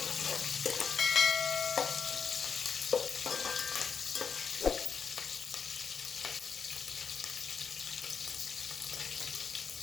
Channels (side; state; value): right; quieter; 6.2 dB